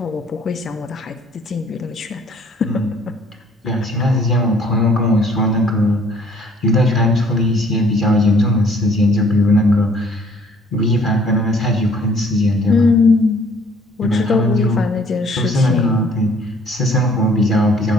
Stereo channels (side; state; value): both; normal; correlation 0.59